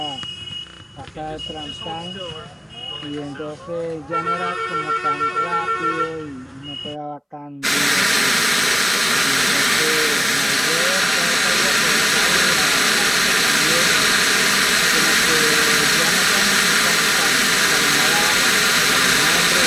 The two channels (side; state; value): both; identical; correlation 1.00